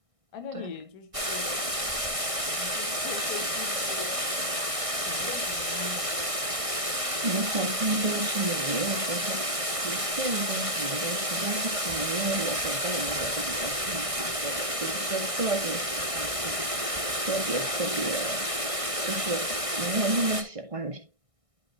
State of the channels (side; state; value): left; late; 1.6 ms